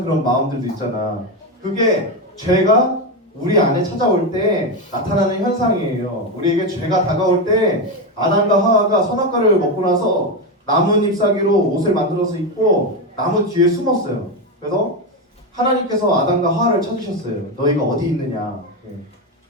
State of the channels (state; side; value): normal; both; correlation 0.12